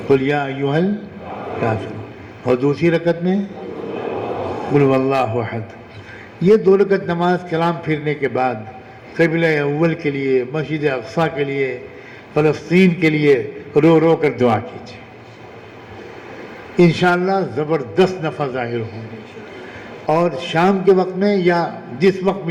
قل یا ایھا الکافرون، اور دوسری رکعت میں قل ھو اللہ احد۔ یہ 2 رکعت نماز کلام پھرنے کے بعد قبلہ اول کے لیے، مسجد اقصیٰ کے لیے، فلسطین کے لیے رو رو کر دعا کیجیے، انشاءاللہ زبردست نفع ظاہر ہوں گے۔ اور شام کے وقت میں یا جس وقت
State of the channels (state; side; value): identical; both; correlation 1.00